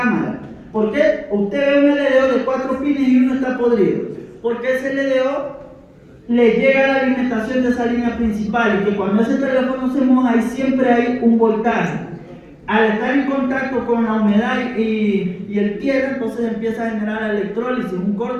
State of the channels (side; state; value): both; identical; correlation 1.00